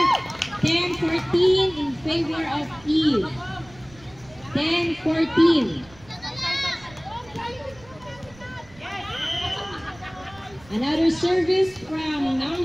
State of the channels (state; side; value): noise; right; rumble, 24 dB below the sound